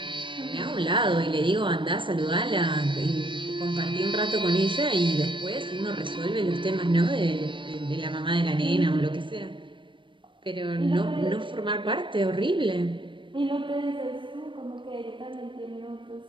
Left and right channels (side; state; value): left; late; 0.24 ms